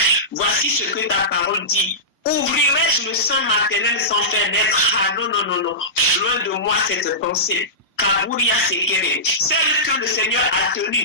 Voici ce que ta parole dit. Ouvrirai-je le sein maternel sans faire naître? Ah non. Loin de moi cette pensée. Kaburia Sekere. Celle que le Seigneur a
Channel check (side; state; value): both; normal; correlation -0.18